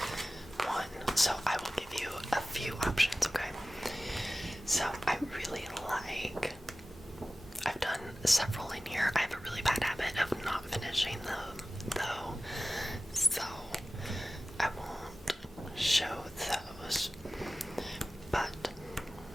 one. So I will give you a few options, okay? So I really like, I've done several in here. I have a really bad habit of not finishing them though, so I won't show those, but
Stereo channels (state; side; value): normal; both; correlation 0.96